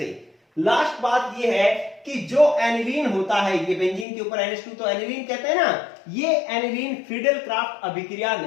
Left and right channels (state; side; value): drops out; right; at 4.0 s